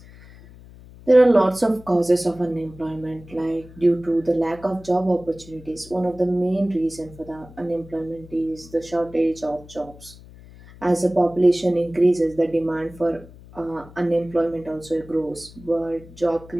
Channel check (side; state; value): left; noise; hum, 20 dB below the sound